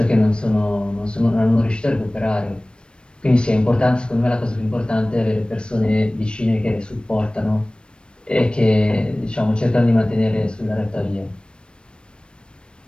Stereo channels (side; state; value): right; late; 0.055 ms